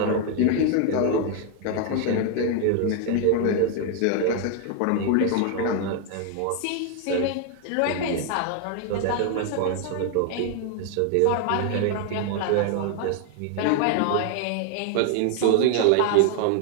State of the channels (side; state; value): both; different; correlation 0.00